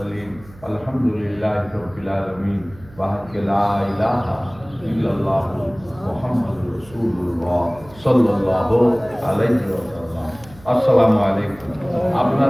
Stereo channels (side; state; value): right; noise; hum, 22 dB below the sound